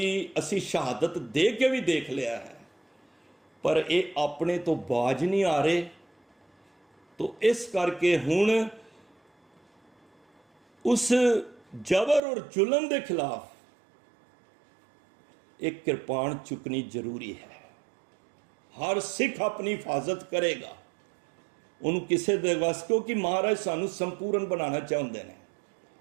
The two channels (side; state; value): left; drops out; at 12.2 s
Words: ਅਸੀਂ ਸ਼ਹਾਦਤ ਦੇ ਕੇ ਵੀ ਦੇਖ ਲਿਆ ਹੈ, ਪਰ ਇਹ ਆਪਣੇ ਤੋਂ ਬਾਜ ਨਹੀਂ ਆ ਰਹੇ। ਤੋ ਇਸ ਕਰਕੇ ਹੁਣ ਉਸ ਜਬਰ ਔਰ ਜ਼ੁਲਮ ਦੇ ਖਿਲਾਫ ਇੱਕ ਕਿਰਪਾਨ ਚੁੱਕਣੀ ਜ਼ਰੂਰੀ ਹੈ। ਹਰ ਸਿੱਖ ਆਪਣੀ ਹਿਫਾਜ਼ਤ ਕਰੇਗਾ, ਉਹਨੂੰ ਕਿਸੇ ਦੇ ਵਸ, ਕਿਉਂਕਿ ਮਹਾਰਾਜ ਸਾਨੂੰ ਸੰਪੂਰਨ ਬਣਾਉਣਾ ਚਾਹੁੰਦੇ ਨੇ।